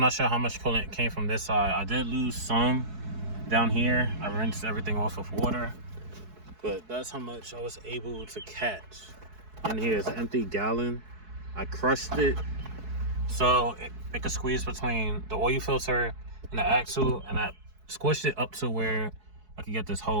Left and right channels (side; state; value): left; late; 4.7 ms